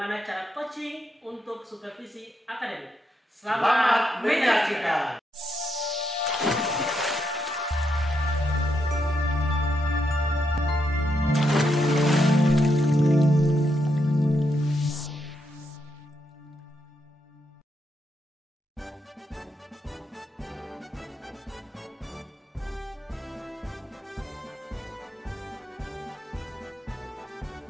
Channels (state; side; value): normal; both; correlation 0.80